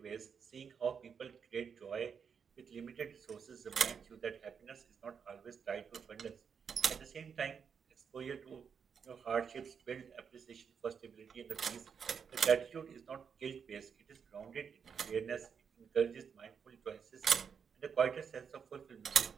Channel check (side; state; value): left; quieter; 6.7 dB